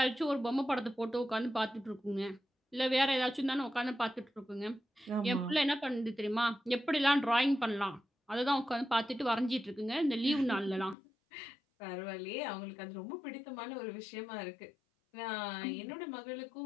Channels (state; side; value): drops out; right; at 11.0 s